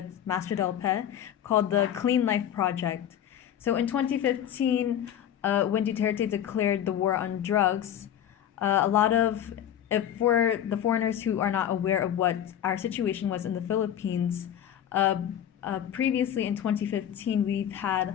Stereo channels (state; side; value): quieter; right; 10.2 dB